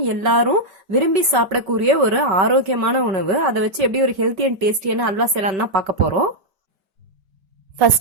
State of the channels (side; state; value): left; late; 5.2 ms